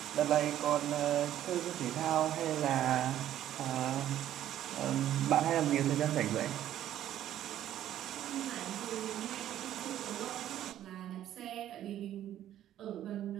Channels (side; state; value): left; quieter; 11.9 dB